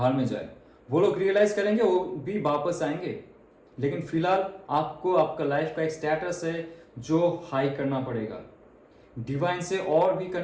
में जाए। वो लोग रियलाइज करेंगे, वो भी वापस आएंगे। लेकिन फिलहाल आपको आपका लाइफ का एक स्टेटस है जो हाई करना पड़ेगा, डिवाइन से और भी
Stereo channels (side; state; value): both; identical; correlation 1.00